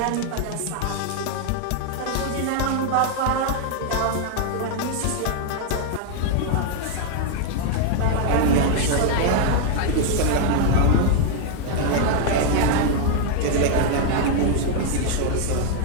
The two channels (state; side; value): different; both; correlation 0.00